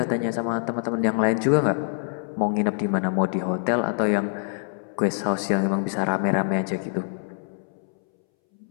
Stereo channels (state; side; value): silent; right; 62 dB below the other